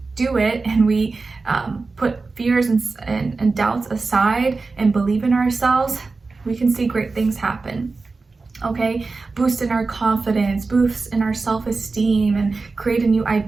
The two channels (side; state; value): left; quieter; 4.0 dB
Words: do it and we put fears and doubts aside and believe in ourselves, we can see great things happen. Okay, boost in our confidence, boost in our self-esteem, and create a new